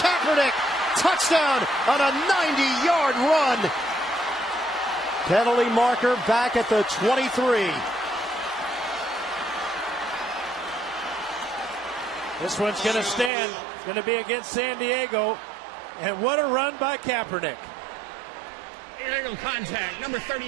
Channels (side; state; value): left; drops out; at 13.3 s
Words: Touchdown on a 90-yard run. Penalty marker back at the 23. This one's going to stand. Going to be against San Diego. And what a run by Kaepernick. Illegal contact. Number